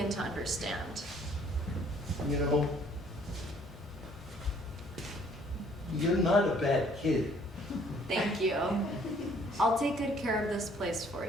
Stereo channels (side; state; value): both; normal; correlation 0.60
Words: to understand. You know, you're not a bad kid. Thank you. I'll take good care of this place for